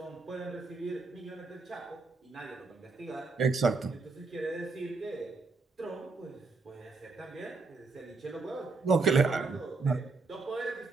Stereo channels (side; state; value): left; quieter; 4.0 dB